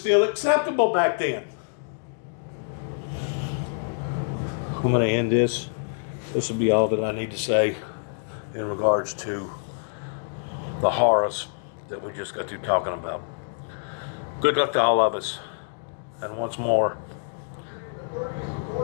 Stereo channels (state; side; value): silent; right; digital silence